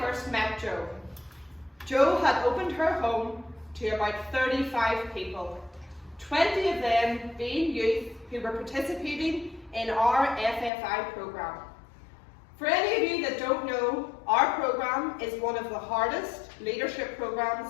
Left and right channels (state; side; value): drops out; right; at 10.7 s